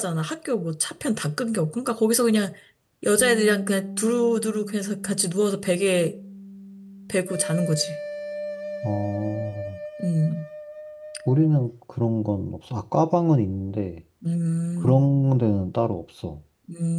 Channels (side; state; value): both; identical; correlation 1.00